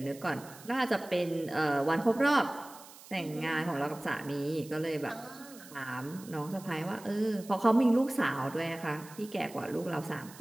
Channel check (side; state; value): right; noise; hiss, 19 dB below the sound